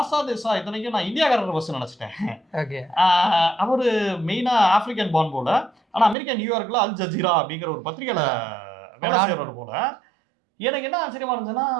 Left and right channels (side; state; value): left; drops out; at 6.2 s